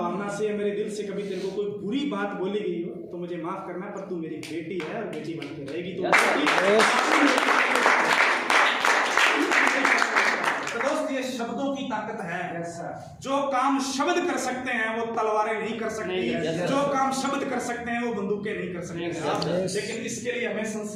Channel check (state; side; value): identical; both; correlation 1.00